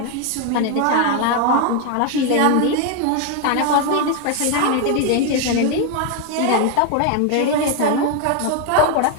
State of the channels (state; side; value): different; both; correlation 0.01